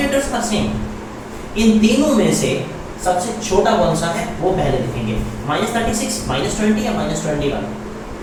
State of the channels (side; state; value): both; identical; correlation 1.00